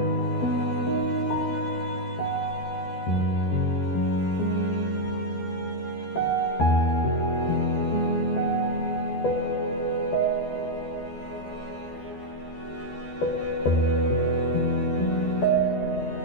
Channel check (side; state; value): right; late; 12 ms